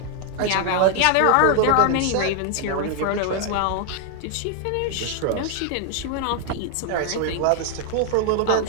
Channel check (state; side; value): different; both; correlation 0.00